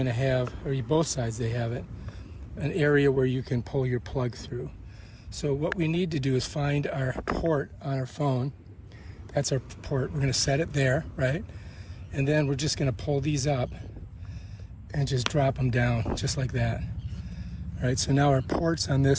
to have, or both sides they have it, an area where you can pull your plug through. So what we need to do is find our port on our phone. That's our port. We're going to set it there, right? And then we're just going to pull these up and just drop them down, just like that. All right, so now our port's on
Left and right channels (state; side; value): identical; both; correlation 1.00